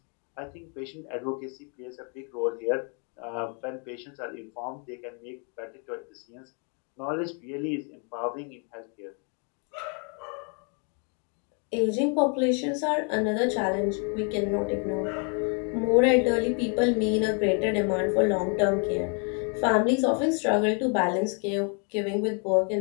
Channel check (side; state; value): right; quieter; 39.0 dB